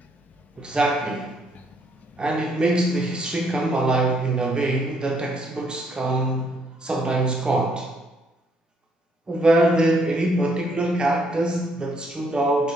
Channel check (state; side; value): normal; both; correlation 0.70